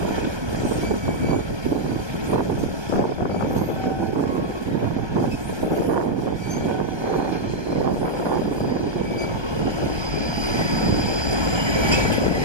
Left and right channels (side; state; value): left; late; 1.3 ms